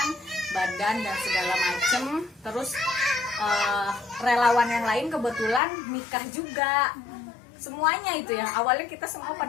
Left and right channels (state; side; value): drops out; right; at 5.6 s